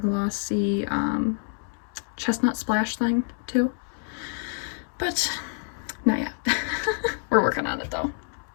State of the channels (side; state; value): right; silent; 60 dB below the other